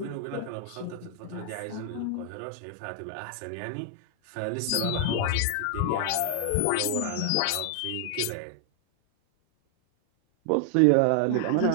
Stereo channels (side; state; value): both; different; correlation 0.00